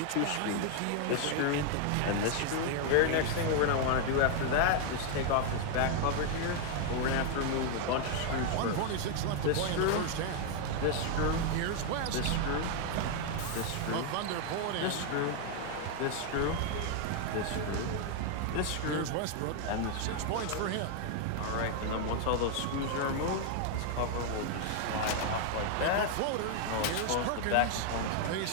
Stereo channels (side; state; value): both; different; correlation 0.00